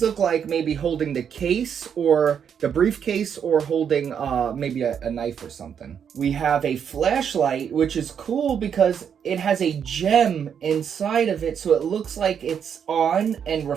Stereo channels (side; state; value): left; quieter; 7.8 dB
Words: like maybe holding the case or the briefcase or holding maybe a knife or something. We have a flashlight, which is cool because it has a gem inside of it, so it looks like it's on and